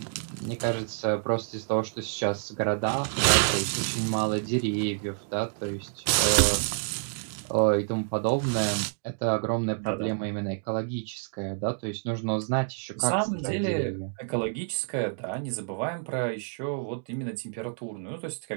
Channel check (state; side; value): silent; left; digital silence